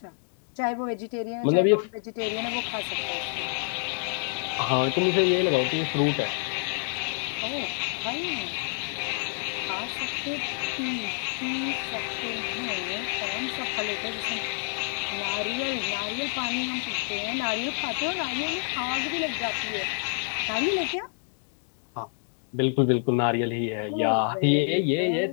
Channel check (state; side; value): silent; right; 59 dB below the other